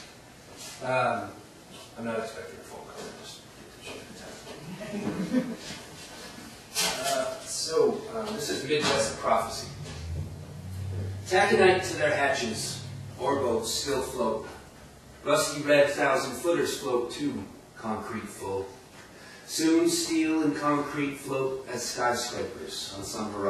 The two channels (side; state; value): both; identical; correlation 1.00